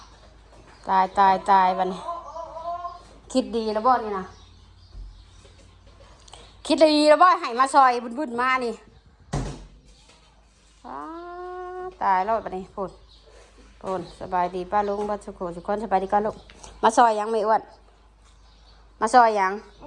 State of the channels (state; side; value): identical; both; correlation 1.00